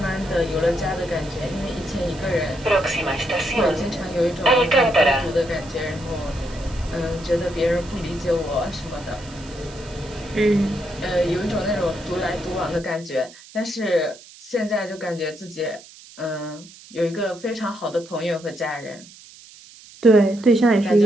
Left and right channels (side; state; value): right; noise; hiss, 20 dB below the sound